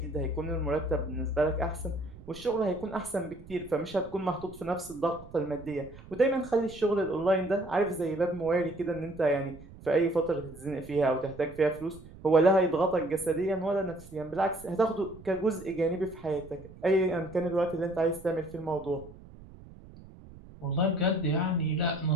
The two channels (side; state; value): right; noise; rumble, 19 dB below the sound